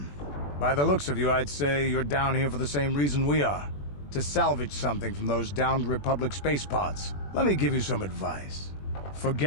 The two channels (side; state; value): right; late; 21 ms